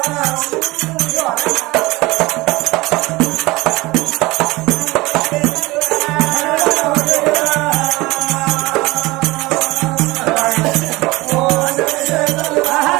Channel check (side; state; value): left; quieter; 21.3 dB